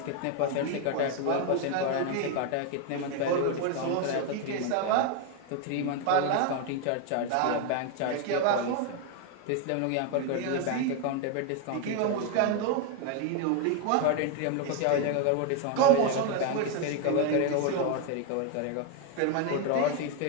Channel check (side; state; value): both; different; correlation 0.01